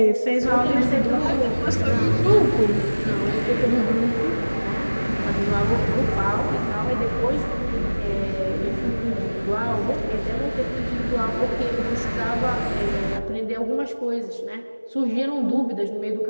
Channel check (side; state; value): both; inverted; correlation -1.00